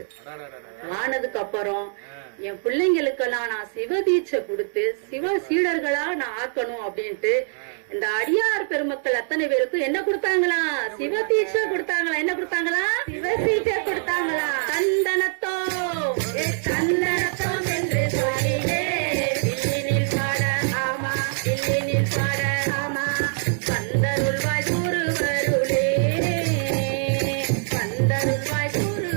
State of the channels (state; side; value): silent; left; digital silence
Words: ஆனதுக்கு அப்புறம் என் பிள்ளைங்களுக்கெல்லாம் நான் சிவதீட்சை கொடுத்து சிவ சீடர்களா நான் ஆக்கணும் அப்படின்ட்டு இந்த அடியார் பெருமக்கள் அத்தனை பேருக்கும் என்ன கொடுத்தாங்களா? சிவதீட்சை கொடுத்தாங்களா? என்ன கொடுத்தாங்களா? சிவதீட்சை கொடுத்தாங்களா? தந்தனத்தோ தந்தனத்தோ என்று சொல்லிலே இல்லினில் பாட ஆமா, இல்லினில் பாட ஆமா, பந்தருள்வாய் குருவருளே, பந்தருள்வாய்